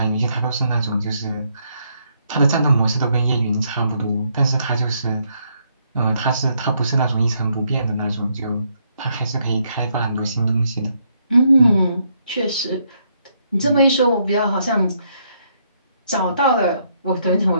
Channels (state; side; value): inverted; both; correlation -0.74